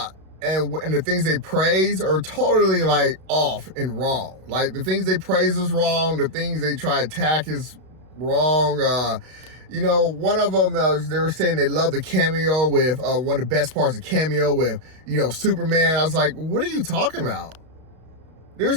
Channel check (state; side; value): late; left; 32 ms